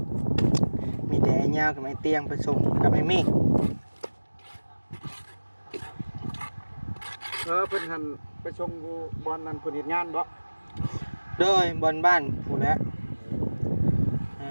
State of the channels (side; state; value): both; inverted; correlation -1.00